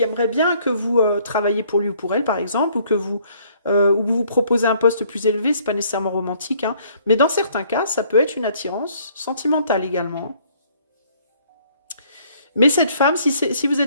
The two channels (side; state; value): both; inverted; correlation -0.62